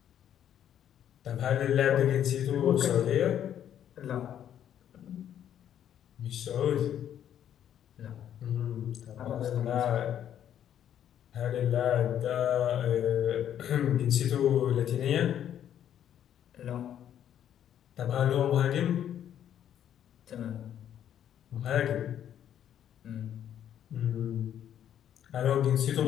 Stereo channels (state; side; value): quieter; right; 10.1 dB